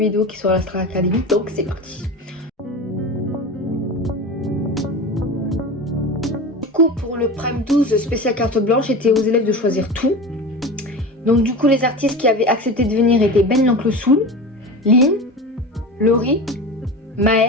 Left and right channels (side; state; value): both; normal; correlation 0.29